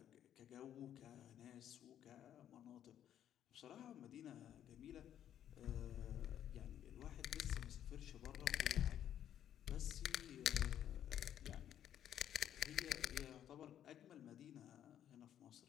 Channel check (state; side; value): quieter; right; 10.5 dB